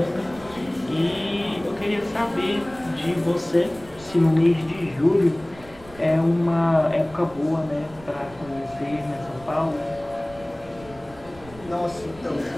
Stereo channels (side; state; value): right; noise; rumble, 21 dB below the sound